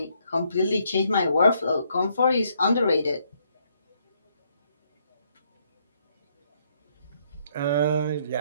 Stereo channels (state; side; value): inverted; both; correlation -0.71